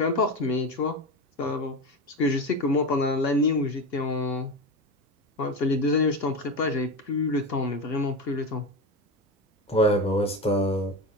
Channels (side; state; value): both; normal; correlation 0.21